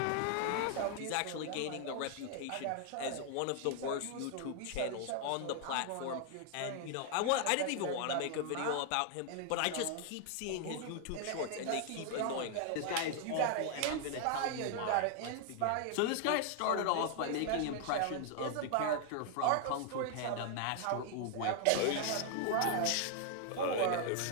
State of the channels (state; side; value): different; both; correlation 0.00